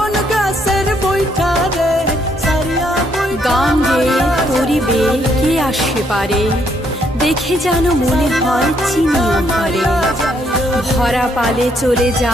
गाছের বৈঠা রে সারিয়া গান গে তোরি বে কে আসে পারে দেখে যেন মনে হয় চিনিও ভরে ভরা পালে চলে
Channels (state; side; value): normal; both; correlation 0.72